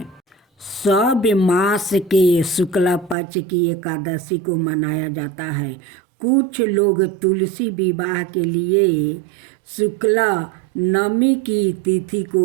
सब मास के शुक्ल पक्ष की एकादशी को मनाया जाता है। कुछ लोग तुलसी विवाह के लिए शुक्ल नवमी की तिथि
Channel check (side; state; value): left; drops out; at 3.2 s